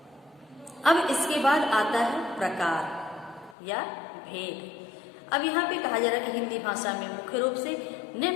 अब इसके बाद आता है प्रकार या भेद। अब यहाँ पे कहा जा रहा है कि हिंदी भाषा में मुख्य रूप से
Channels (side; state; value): right; drops out; at 3.6 s